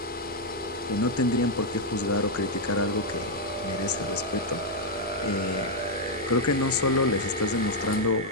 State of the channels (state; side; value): normal; both; correlation -0.01